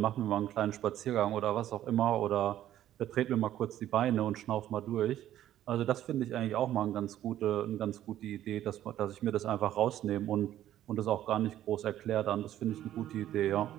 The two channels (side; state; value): left; quieter; 12.3 dB